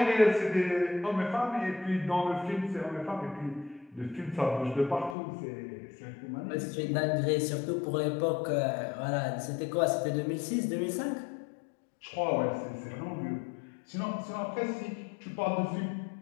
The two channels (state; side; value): drops out; right; at 5.2 s